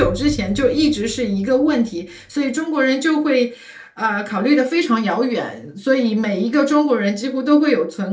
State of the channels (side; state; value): both; identical; correlation 1.00